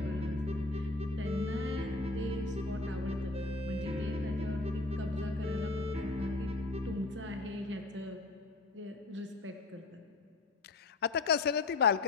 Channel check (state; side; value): quieter; right; 3.1 dB